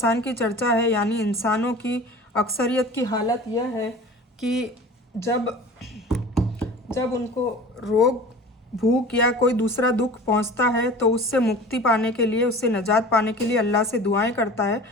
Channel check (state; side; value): normal; both; correlation 0.40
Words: की चर्चा है, यानी इंसानों की अक्सरियत की हालत यह है कि जब उनको रोग, भूख या कोई दूसरा दुख पहुंचता है तो उससे मुक्ति पाने के लिए, उससे निजात पाने के लिए अल्लाह से दुआएं करता है